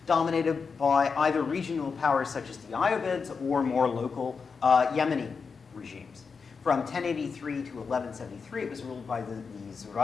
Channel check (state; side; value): quieter; right; 5.3 dB